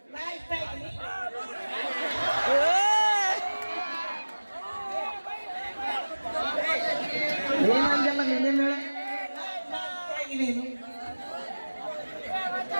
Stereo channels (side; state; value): both; inverted; correlation -1.00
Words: ಏನಂದಲ್ಲ ನಿನ್ನೆ ಮೇಳ?